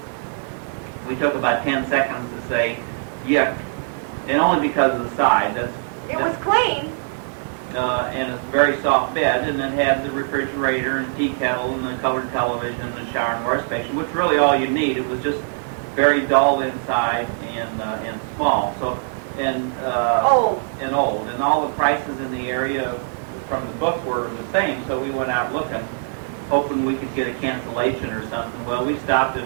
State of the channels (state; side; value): silent; left; digital silence